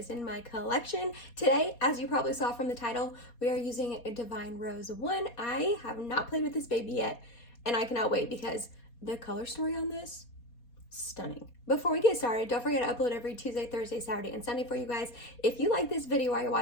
in my collection. Today, as you probably saw from the title, we are using a Divine Rose 1. I have not played with this baby yet, and I cannot wait because the color story on this, stunning. Before we get started, don't forget to upload every Tuesday, Thursday, Saturday, and Sunday for you guys. If you like this video while you're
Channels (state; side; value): late; right; 4.2 ms